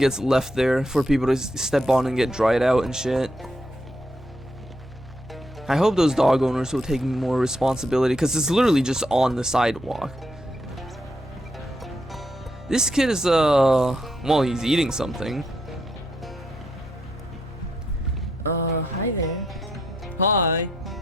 left there for people to step on and get dried out and shit. I hope those dog owners will take more responsibility, because it's literally just on the sidewalk. This kid is, well, he's eating something. Hi there. Hi.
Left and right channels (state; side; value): normal; both; correlation 0.78